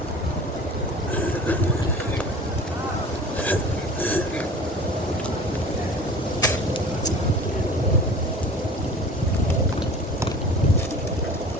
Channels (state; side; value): normal; both; correlation 0.41